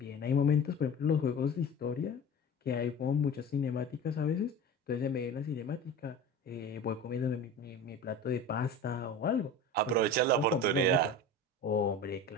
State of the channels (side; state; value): both; normal; correlation 0.33